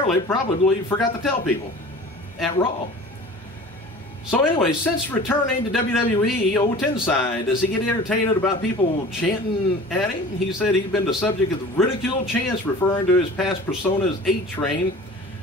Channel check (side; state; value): both; normal; correlation 0.41